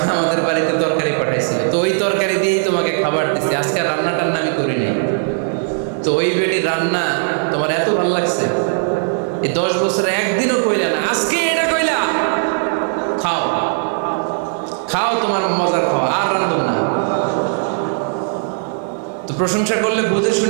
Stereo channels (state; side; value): silent; left; 67 dB below the other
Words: আমাদের বাড়িতে তরকারি পাঠাইছিল, তো ওই তরকারি দিয়েই তোমাকে খাবার দিচ্ছি, আজকে রান্না টান্না আমি করি নাই। তো ওই বেটির রান্না তোমার এত ভালো লাগছে, এই 10 বছরে একদিনও কইলা না, আজকে এটা কইলা, খাও খাও, তোমার মজার খাওয়া, আর রান্ধব না। তো প্রশংসা করলে বুঝে